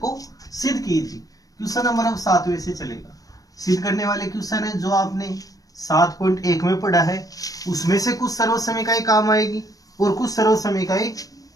सिद्ध कीजिए। क्वेश्चन नंबर अब 7वें से चलेगा। सिद्ध करने वाले क्वेश्चन है जो आपने 7.1 में पढ़ा है उसमें से कुछ सर्वसमीकाएं काम आएगी और कुछ सर्वसमीकाएं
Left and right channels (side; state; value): right; late; 0.17 ms